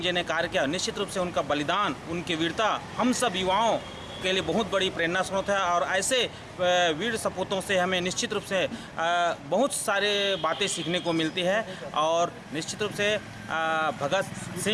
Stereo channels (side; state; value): both; identical; correlation 1.00